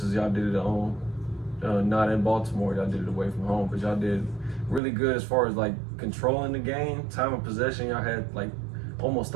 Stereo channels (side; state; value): left; drops out; at 4.8 s